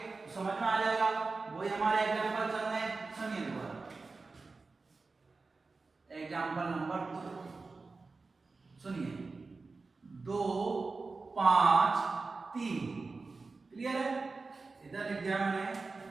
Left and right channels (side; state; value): left; quieter; 3.9 dB